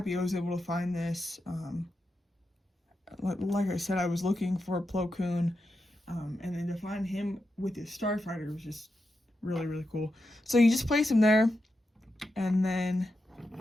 I was able to find this. Like I said, I was looking for Plo Koon, and then to find him with his starfighter was just really, really cool. So you just place him there, and then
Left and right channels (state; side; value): normal; both; correlation 0.88